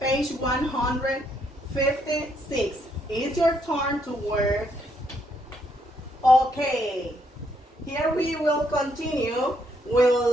156. It's your turn to work. Okay, here we will continue with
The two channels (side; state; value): both; normal; correlation 0.73